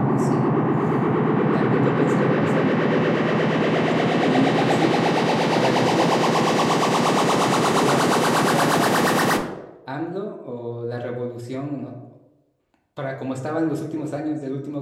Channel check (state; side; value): identical; both; correlation 1.00